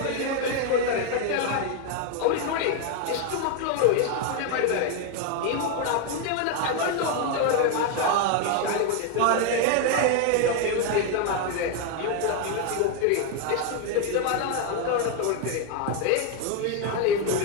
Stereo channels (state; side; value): different; both; correlation 0.01